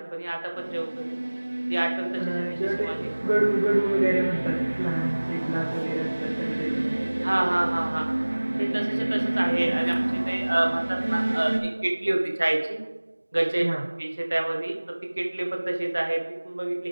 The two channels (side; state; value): both; inverted; correlation -1.00